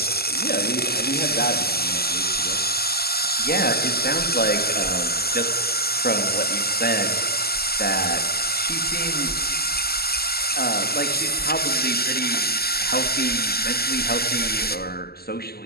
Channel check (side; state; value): right; late; 0.46 ms